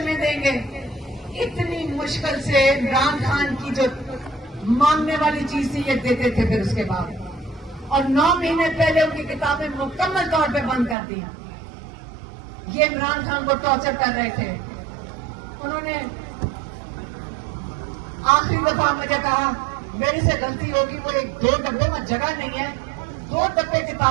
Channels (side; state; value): left; drops out; at 11.0 s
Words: देंगे, इतनी मुश्किल से इमरान खान की जो मांगने वाली चीज थी ये देते थे। फिर उसके बाद और 9 महीने पहले उनकी किताबें मुकम्मल तौर पे बंद कर दी। ये इमरान खान को टॉर्चर कर रहे थे। उन्होंने आखिरी दफा मुझे कहा मेरे से गलती होगी, वो 1-2 डब्बे में जगह नहीं है, 2 डब्बे